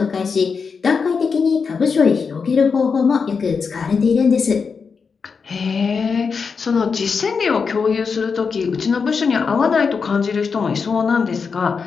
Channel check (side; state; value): right; quieter; 5.5 dB